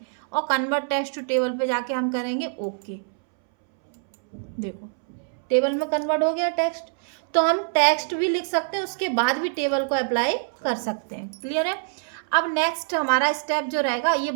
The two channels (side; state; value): left; silent; 62 dB below the other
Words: और कन्वर्ट टेक्स्ट टू टेबल पे जाके हम करेंगे ओके। देखो टेबल में कन्वर्ट हो गया टेक्स्ट। तो हम टेक्स्ट भी लिख सकते हैं, उसके बाद भी टेबल को अप्लाई कर सकते हैं। क्लियर है। अब नेक्स्ट हमारा स्टेप जो रहेगा ये